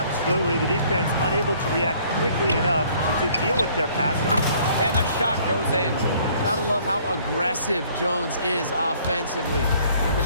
The defense unable to react quickly enough to deal with their passing. And the shot goes in. Gotta love how aggressive Jones is offensively. When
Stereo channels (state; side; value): inverted; both; correlation -0.59